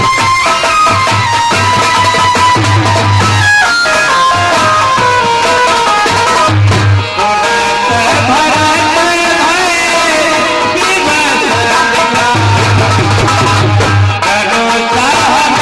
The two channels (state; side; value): identical; both; correlation 1.00